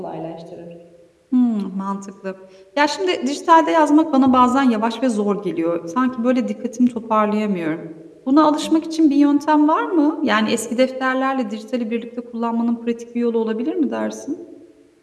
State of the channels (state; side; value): identical; both; correlation 1.00